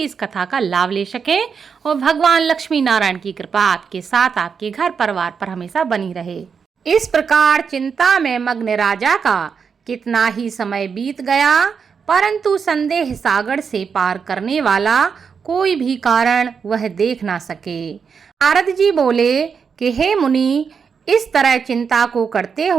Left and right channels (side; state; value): left; quieter; 6.2 dB